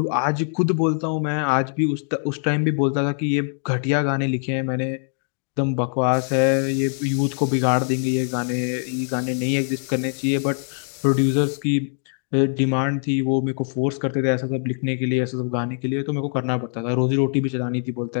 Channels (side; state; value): right; silent; 58 dB below the other